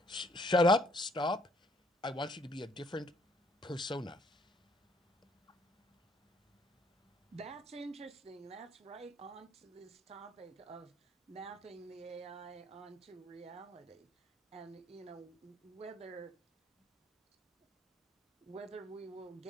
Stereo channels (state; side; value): normal; both; correlation 0.65